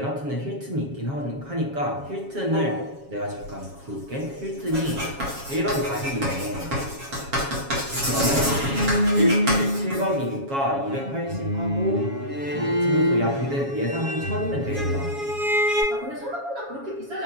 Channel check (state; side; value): late; left; 7.3 ms